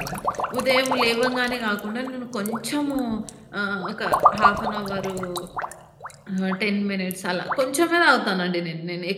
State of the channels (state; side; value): identical; both; correlation 1.00